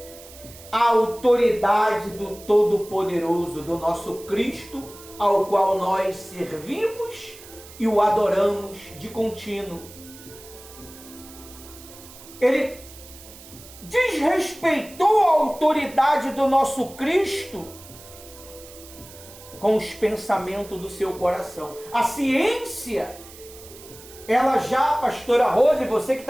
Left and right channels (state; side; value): noise; right; hiss, 19 dB below the sound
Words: a autoridade do Todo-Poderoso, do nosso Cristo, ao qual nós servimos e o adoramos de contínuo. Ele desrespeitou a autoridade do nosso Cristo com os pensamentos do seu coração. A ciência, ela já, pastora Rose, você que